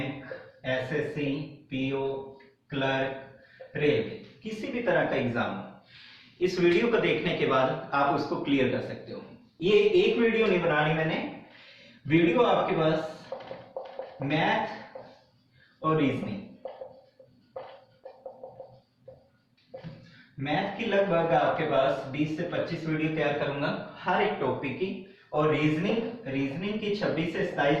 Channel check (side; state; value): both; identical; correlation 1.00